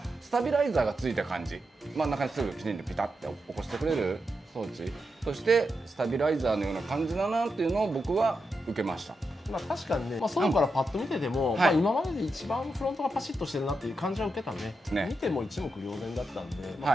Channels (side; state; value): both; normal; correlation 0.86